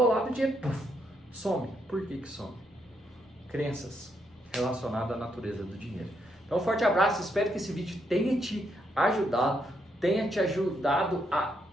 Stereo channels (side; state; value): both; normal; correlation 0.77